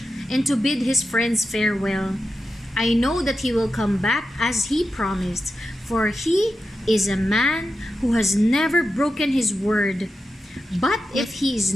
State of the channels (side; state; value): both; normal; correlation 0.90